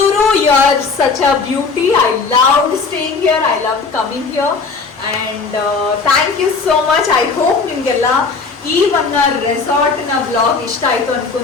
you are such a beauty. I loved staying here. I loved coming here. And thank you so much. I hope ನಿಮಗೆಲ್ಲ ಈ ಒಂದು ರೆಸಾರ್ಟ್ನ vlog ಇಷ್ಟ ಆಯಿತು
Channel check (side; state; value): right; quieter; 4.6 dB